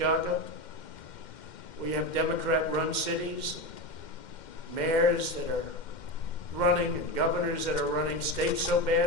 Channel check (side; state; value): right; late; 2.1 ms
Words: We have Democrat-run cities, mayors that are running, and governors that are running states so